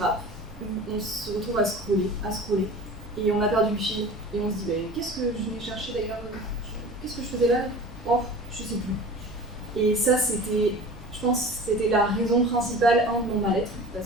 où on se retrouve à scroller, et on a perdu le fil, et on se dit qu'est-ce que je venais chercher d'ailleurs, qu'est-ce que je faisais là? Oh, je sais plus. Et ça, je pense que c'était la raison principale de mon mal-être,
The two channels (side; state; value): both; normal; correlation 0.39